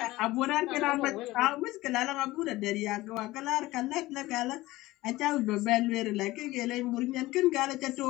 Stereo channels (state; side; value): quieter; right; 18.4 dB